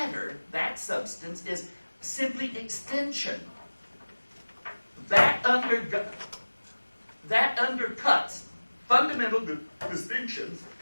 that substance, is simply extension. That undercuts fundamental distinctions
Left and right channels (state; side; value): inverted; both; correlation -1.00